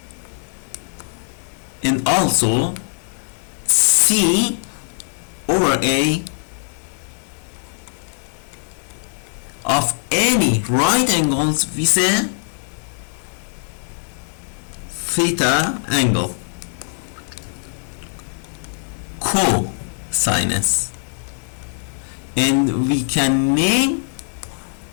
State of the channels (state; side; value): silent; right; digital silence